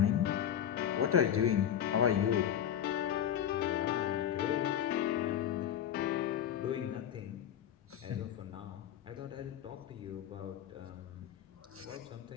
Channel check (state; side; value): quieter; right; 9.8 dB